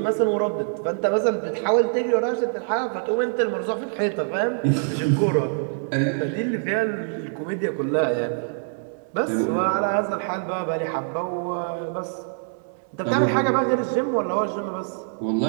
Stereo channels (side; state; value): left; silent; 62 dB below the other